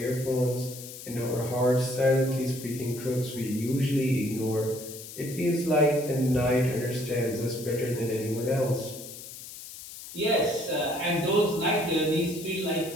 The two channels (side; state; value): left; noise; hiss, 13 dB below the sound